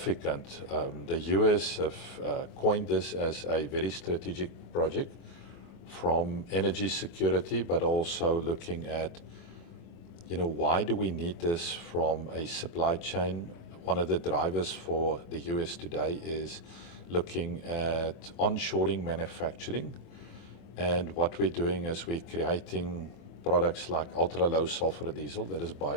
The US have coined this as a very strategic project from energy security, but also looking at, you know, why do we need this from a supply chain? One of the drivers for the US today is looking at onshoring manufacturing. And what we're doing is we're creating products like ultra-low sulfur diesel that is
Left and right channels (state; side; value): late; right; 24 ms